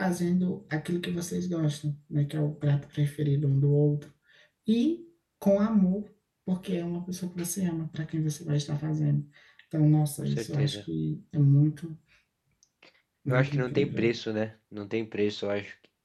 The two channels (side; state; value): both; identical; correlation 1.00